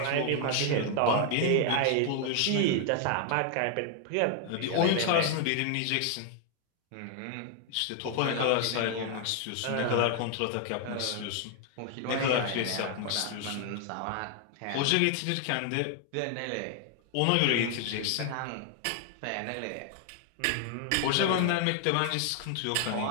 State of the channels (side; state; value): both; different; correlation 0.00